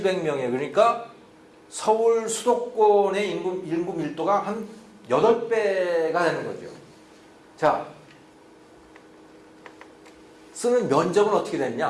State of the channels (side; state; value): both; identical; correlation 1.00